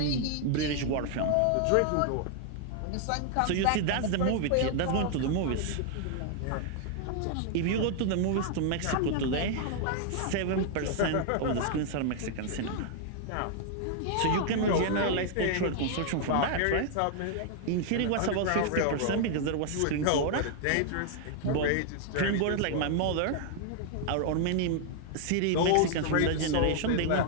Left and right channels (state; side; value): different; both; correlation 0.00